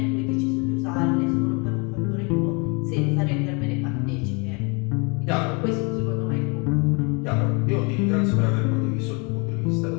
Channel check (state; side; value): quieter; right; 31.6 dB